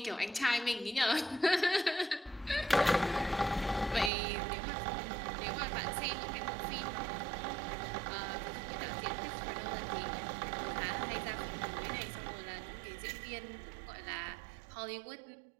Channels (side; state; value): left; drops out; at 4.1 s